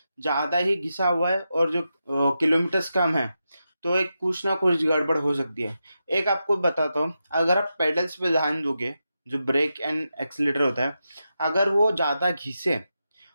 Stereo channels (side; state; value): both; inverted; correlation -0.88